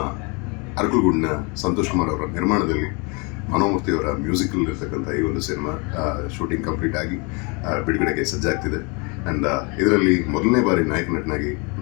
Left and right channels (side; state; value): right; quieter; 31.2 dB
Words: ಅರಕಲಗೂಡಿನ ಸಂತೋಷ್ ಕುಮಾರ್ ಅವರ ನಿರ್ಮಾಣದಲ್ಲಿ, ಮನೋಮೂರ್ತಿ ಅವರ ಮ್ಯೂಸಿಕಲ್ ಇರ್ತಕ್ಕಂಥ ಈ ಒಂದು ಸಿನಿಮಾ ಶೂಟಿಂಗ್ ಕಂಪ್ಲೀಟ್ ಆಗಿ ಬಿಡುಗಡೆಗೆ ಸಜ್ಜಾಗ್ತಿದೆ. ಆ್ಯಂಡ್ ಇದರಲ್ಲಿ ಮೊದಲನೇ ಬಾರಿ ನಾಯಕ ನಟನಾಗಿ